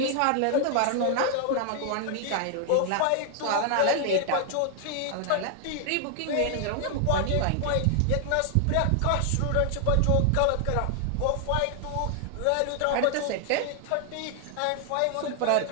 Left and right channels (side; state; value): both; different; correlation 0.00